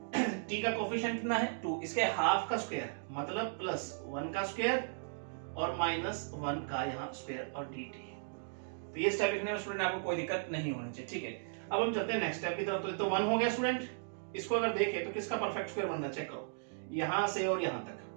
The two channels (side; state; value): left; silent; digital silence